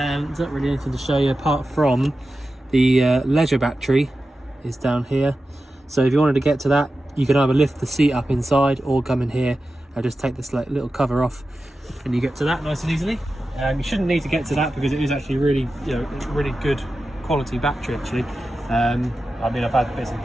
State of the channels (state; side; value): normal; both; correlation 0.93